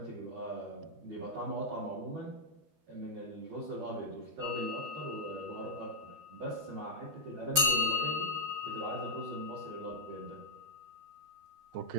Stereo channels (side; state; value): left; late; 12 ms